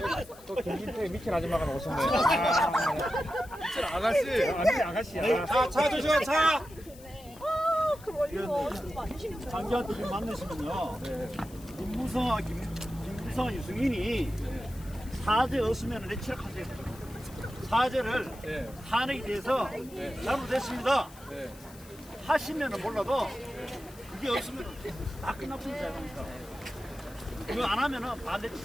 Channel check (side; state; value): left; noise; hiss, 21 dB below the sound